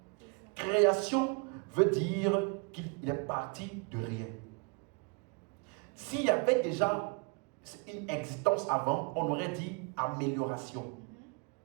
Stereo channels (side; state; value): left; quieter; 32.9 dB